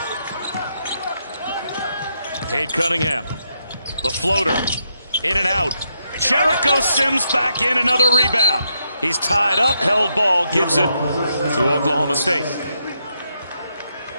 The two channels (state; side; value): inverted; both; correlation -0.80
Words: Cade Cunningham, the floater, in and out. Jericho Sims back in, another rebound. He's tied up, held ball, gives it to Oklahoma State.